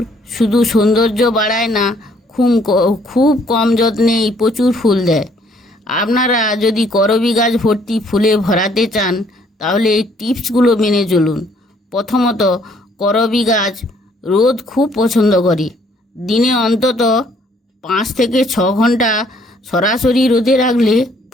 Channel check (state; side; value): normal; both; correlation 0.64